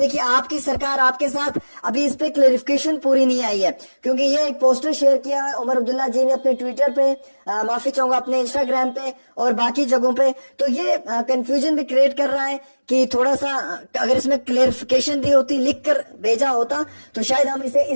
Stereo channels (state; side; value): inverted; both; correlation -1.00